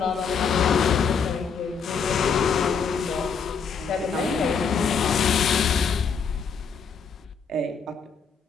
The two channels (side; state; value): right; quieter; 6.0 dB